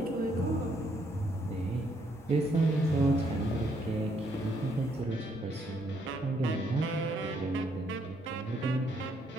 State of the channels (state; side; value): normal; both; correlation 0.71